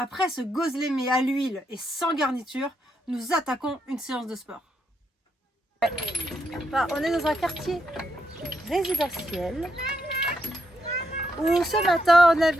ce gözleme à l'huile et sans garniture, nous attaquons une séance de sport. Enfin, on est dans un quartier résidentiel où ce matin on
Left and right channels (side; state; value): both; normal; correlation 0.80